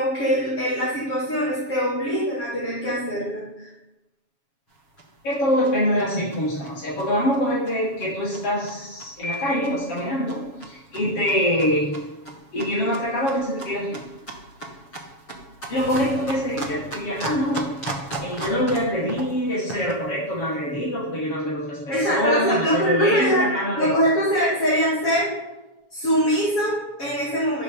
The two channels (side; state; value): right; late; 7.2 ms